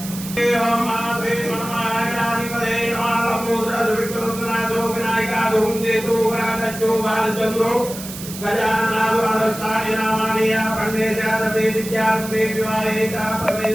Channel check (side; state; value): right; noise; hiss, 11 dB below the sound